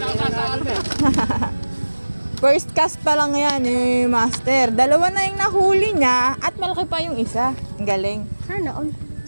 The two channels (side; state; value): both; inverted; correlation -1.00